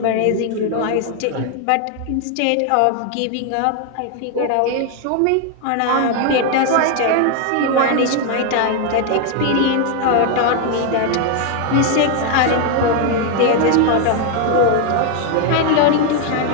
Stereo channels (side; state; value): both; different; correlation 0.01